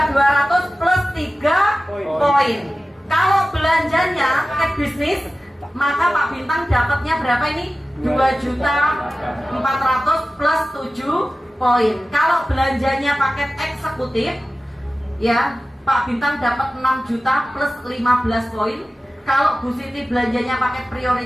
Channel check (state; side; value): normal; both; correlation 0.95